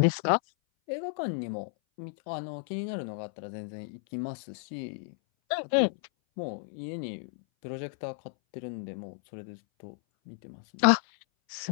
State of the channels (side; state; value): right; silent; 57 dB below the other